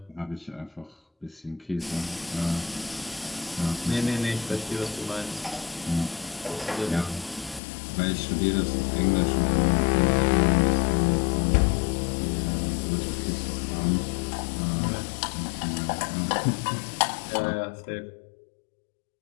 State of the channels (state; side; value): drops out; right; at 7.6 s